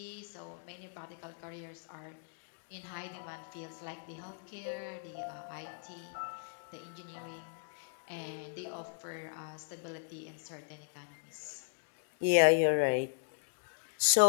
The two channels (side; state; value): right; silent; digital silence